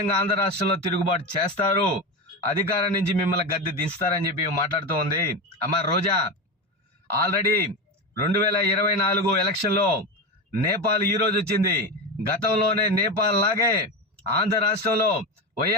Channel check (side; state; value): both; normal; correlation 0.19